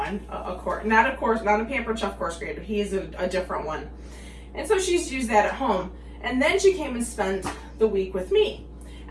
not a Pampered Chef coarse grater. He is a different one, and so she's used that at home. And then she came and spent the week with me.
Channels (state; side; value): identical; both; correlation 1.00